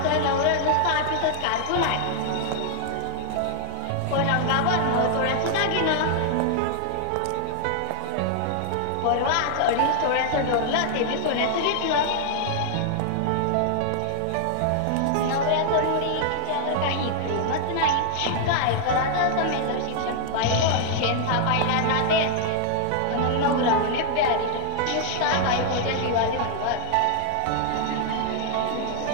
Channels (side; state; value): both; different; correlation 0.00